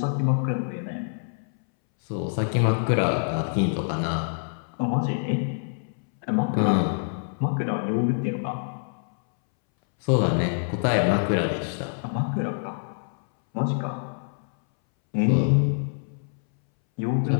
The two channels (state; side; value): silent; right; 60 dB below the other